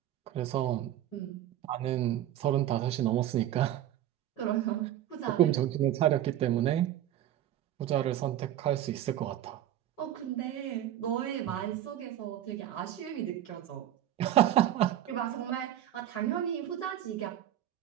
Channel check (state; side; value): quieter; left; 12.1 dB